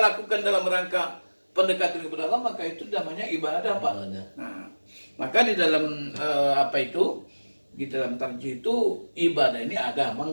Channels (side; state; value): both; inverted; correlation -1.00